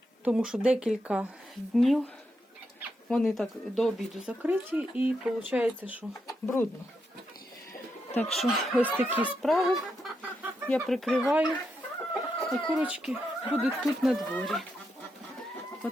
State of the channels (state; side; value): normal; both; correlation 0.83